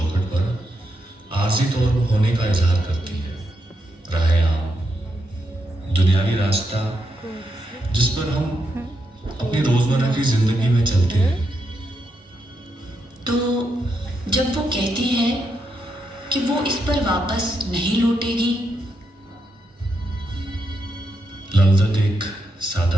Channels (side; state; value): both; normal; correlation 0.82